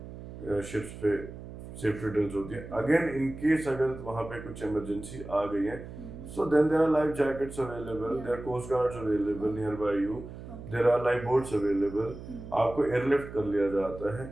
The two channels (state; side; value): noise; right; hum, 12 dB below the sound